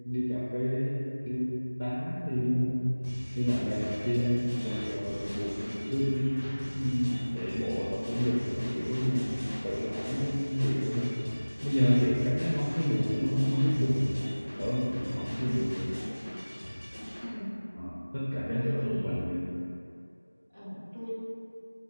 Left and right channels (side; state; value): both; inverted; correlation -1.00